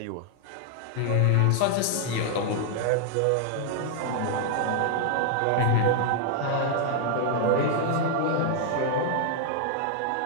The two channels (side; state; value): both; different; correlation 0.00